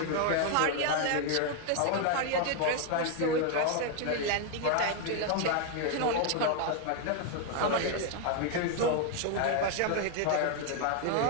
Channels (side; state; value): both; different; correlation 0.01